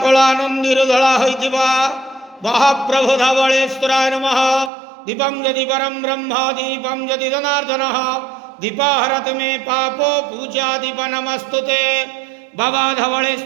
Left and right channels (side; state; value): left; drops out; at 4.7 s